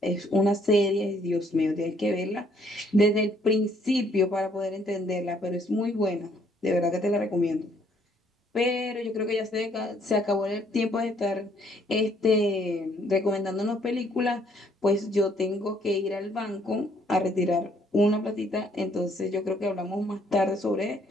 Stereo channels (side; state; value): both; normal; correlation 0.65